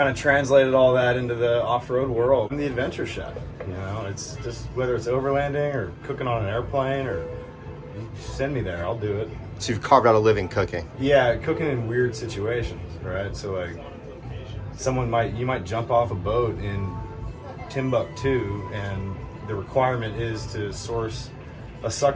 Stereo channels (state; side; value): identical; both; correlation 1.00